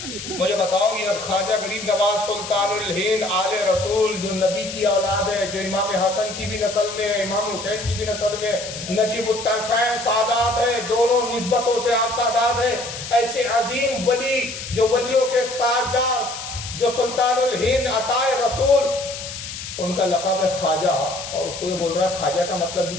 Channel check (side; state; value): left; noise; hiss, 9 dB below the sound